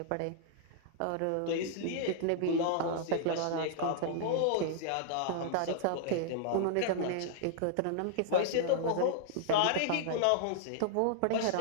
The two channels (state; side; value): different; both; correlation -0.01